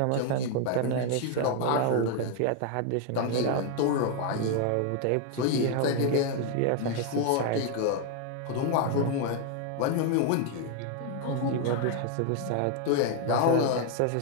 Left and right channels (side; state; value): both; different; correlation 0.01